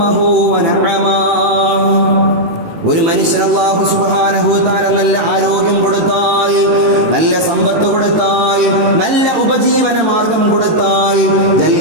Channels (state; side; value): late; left; 18 ms